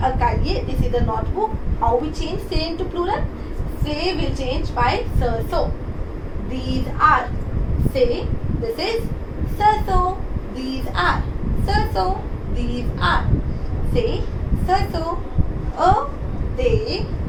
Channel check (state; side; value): identical; both; correlation 1.00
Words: cahier, this is a notebook. How we change say into plural? Say will change by so. These are. Say this is so. These are. So. These are. Say so. A they